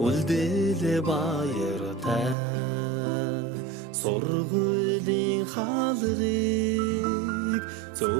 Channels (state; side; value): drops out; left; at 2.4 s